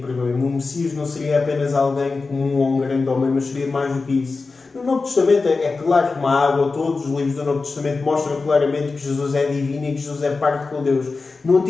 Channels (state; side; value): quieter; right; 4.1 dB